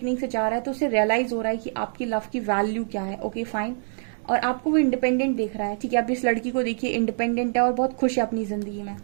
से जा रहा है, तो उसे रियलाइज हो रहा है कि आपकी लव की वैल्यू क्या है। Okay fine. और आपको वो इंडिपेंडेंट देख रहा है, ठीक है। अब इस लड़की को देखिए इंडिपेंडेंट है और बहुत खुश है अपनी जिंदगी में।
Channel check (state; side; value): silent; left; digital silence